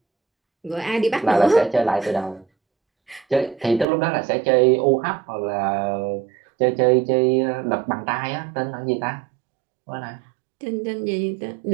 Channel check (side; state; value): left; drops out; at 3.9 s